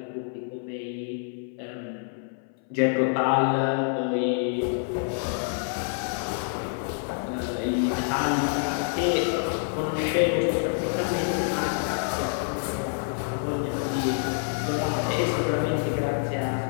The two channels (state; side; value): silent; right; 59 dB below the other